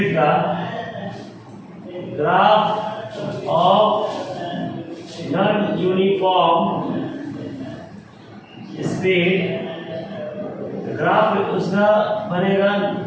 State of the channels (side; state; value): both; identical; correlation 1.00